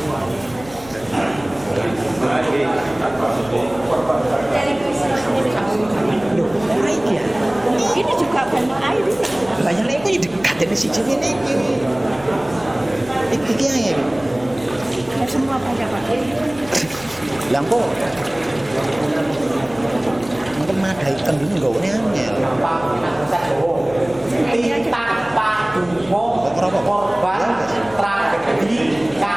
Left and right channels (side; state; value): left; noise; hum, 20 dB below the sound